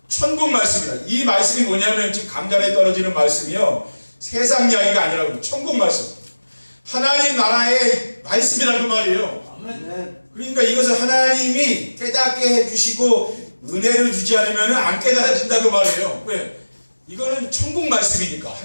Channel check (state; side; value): inverted; both; correlation -1.00